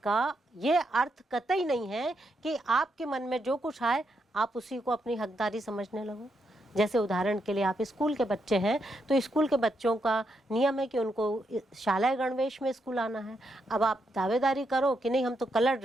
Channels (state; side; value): normal; both; correlation 0.81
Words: का ये अर्थ कतई नहीं है कि आपके मन में जो कुछ आए आप उसी को अपनी हकदारी समझने लगो। जैसे उदाहरण के लिए आप स्कूल के बच्चे हैं तो स्कूल के बच्चों का नियम है कि उनको शालाय गणवेश में स्कूल आना है। अब आप दावेदारी करो कि नहीं हम तो कलर